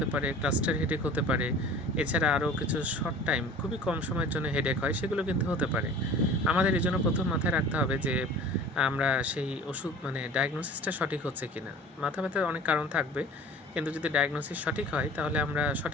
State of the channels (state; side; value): normal; both; correlation 0.43